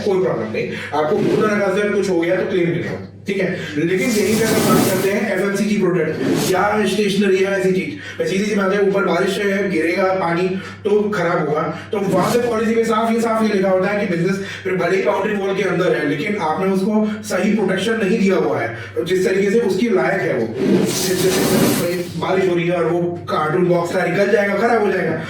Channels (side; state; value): both; identical; correlation 1.00